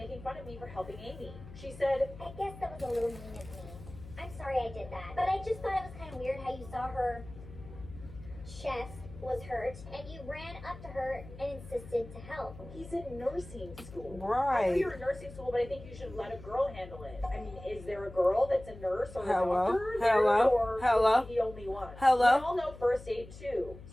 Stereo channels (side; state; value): left; noise; hum, 15 dB below the sound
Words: fun of me for helping Amy. She said, I guess that was a little mean of me. I'm sorry I did that. But I just thought it was kind of weird how you saw her chest was hurt, and you ran up to her and insisted to help. He's in nursing school. Right. I know you're in nursing school, but I think you should let a girl handle it. I mean, is there a girl that's a nurse or a doctor there, or is he the only one? Hello? We all know first aid too,